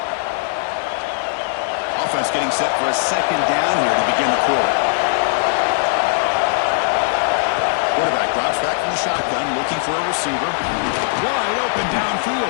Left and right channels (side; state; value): right; silent; digital silence